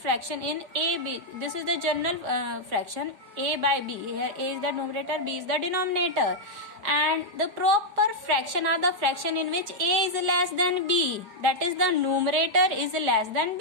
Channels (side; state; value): left; late; 5.0 ms